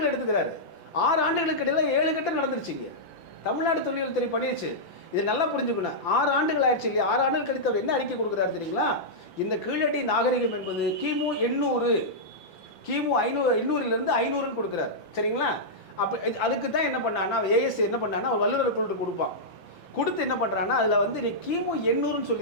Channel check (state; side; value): late; right; 5.9 ms